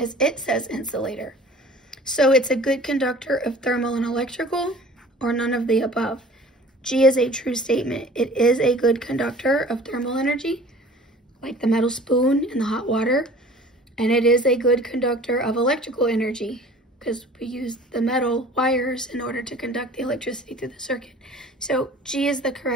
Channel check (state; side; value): normal; both; correlation 0.46